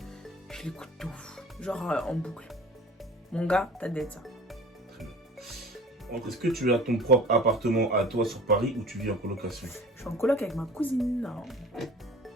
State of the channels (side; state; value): both; normal; correlation 0.44